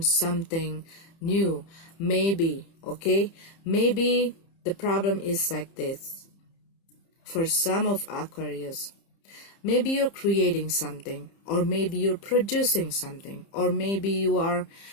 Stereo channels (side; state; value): right; late; 30 ms